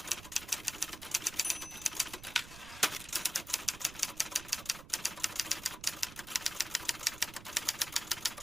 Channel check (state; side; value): noise; right; rumble, 15 dB below the sound